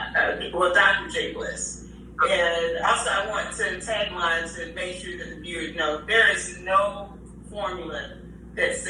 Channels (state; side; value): identical; both; correlation 1.00